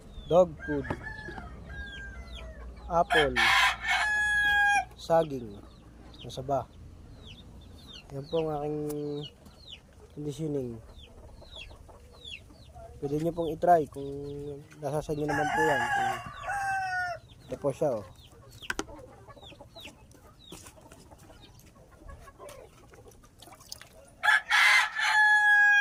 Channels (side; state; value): both; identical; correlation 1.00